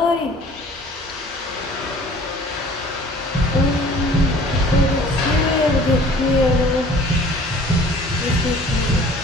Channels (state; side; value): normal; both; correlation 0.49